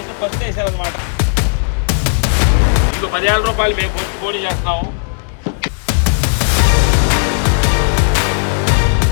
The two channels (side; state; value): right; silent; digital silence